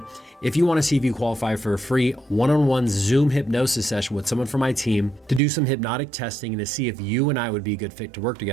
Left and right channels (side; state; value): left; drops out; at 5.4 s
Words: if you want to see if you qualify for a free one-on-one Zoom hypnosis session with someone from my team to do some hypnotic testing and to see if you and I would be a good fit to work